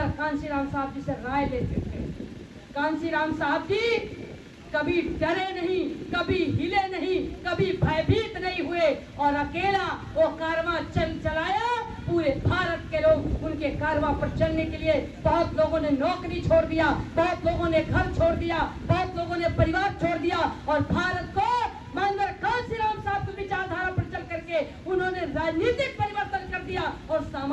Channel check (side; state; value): both; identical; correlation 1.00